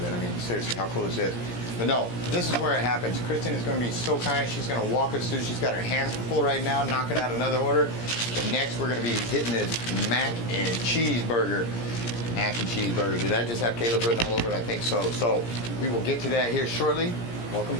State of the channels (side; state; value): right; late; 17 ms